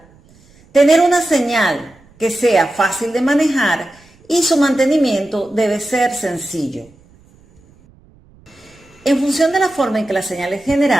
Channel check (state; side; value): noise; right; rumble, 29 dB below the sound